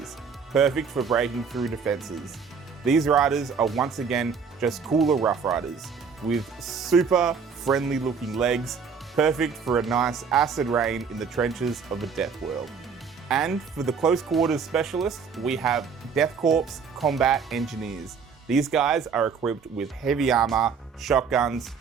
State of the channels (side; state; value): left; quieter; 6.0 dB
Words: perfect for breaking through defenses. These riders are once again just cooler rough riders, with super friendly looking legs, perfect for a nice acid rain in the trenches of a death world. And for the close quarters specialists, we have Death Korps Combat Engineers. These guys are equipped with heavy armor, shotguns,